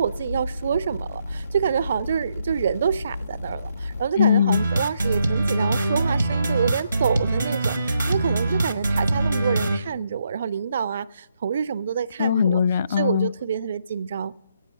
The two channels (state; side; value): inverted; both; correlation -0.77